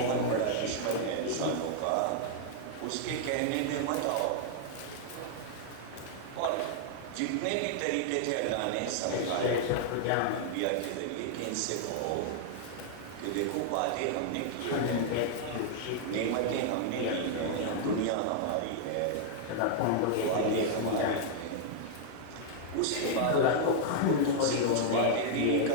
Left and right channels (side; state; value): both; different; correlation -0.01